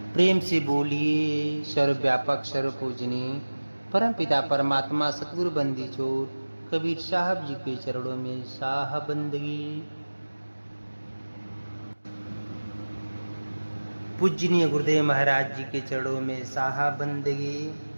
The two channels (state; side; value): inverted; both; correlation -1.00